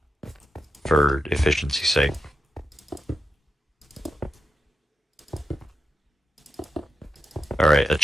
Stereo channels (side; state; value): both; normal; correlation 0.88